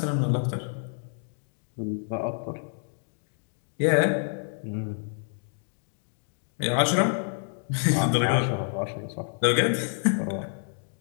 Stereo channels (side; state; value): right; silent; digital silence